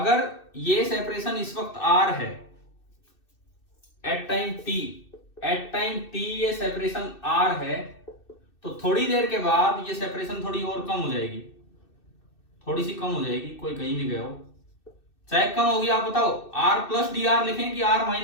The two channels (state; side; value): late; right; 2.6 ms